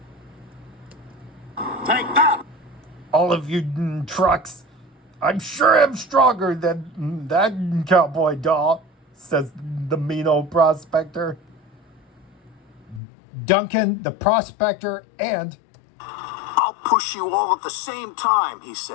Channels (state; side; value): drops out; right; at 13.0 s